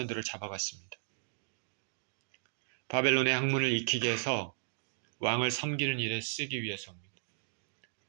잡아갔습니다. 바벨론의 학문을 익히게 해서 왕을 섬기는 일에 쓰기 위해서입니다.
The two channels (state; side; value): silent; left; digital silence